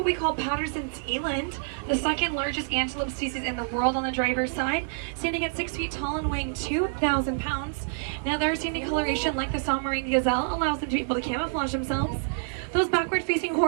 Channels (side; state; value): left; silent; 60 dB below the other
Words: we call Patterson's eland, the second largest antelope species in the world on the driver's side, standing at 6 feet tall and weighing 2,000 pounds. Now their sandy coloration, like the Sonoran gazelle, allows them to be able to camouflage themselves. Those backward-facing